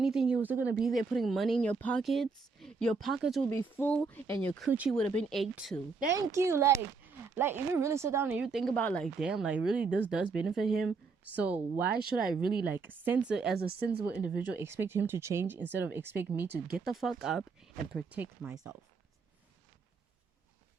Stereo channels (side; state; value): left; quieter; 4.6 dB